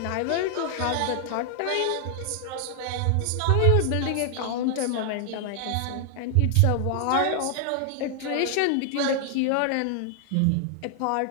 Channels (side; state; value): both; different; correlation 0.00